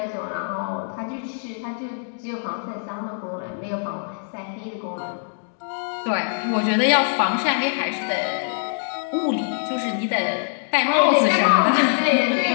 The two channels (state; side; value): silent; right; digital silence